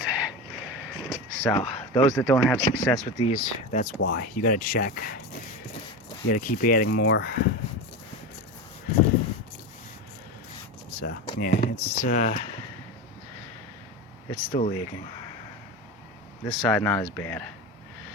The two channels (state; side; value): normal; both; correlation 0.22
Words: So those that don't have success with these, that's why. You gotta check. You gotta keep adding more. So yeah, it's still leaking. This side not as bad.